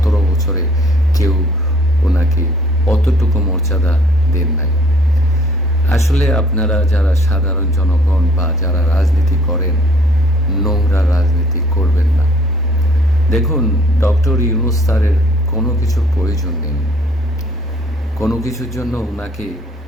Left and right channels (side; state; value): both; normal; correlation 0.58